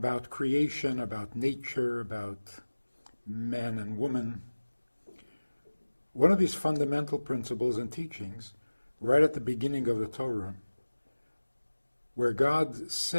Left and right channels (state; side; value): inverted; both; correlation -1.00